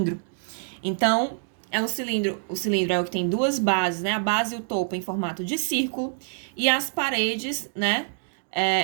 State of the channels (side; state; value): left; silent; digital silence